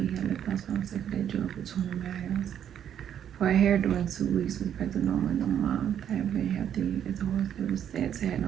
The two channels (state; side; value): quieter; left; 9.5 dB